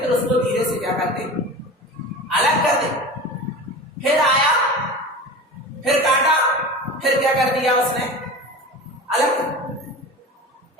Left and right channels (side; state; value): both; normal; correlation 0.32